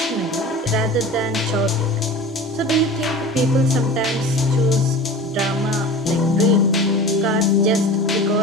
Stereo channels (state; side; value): normal; both; correlation 0.36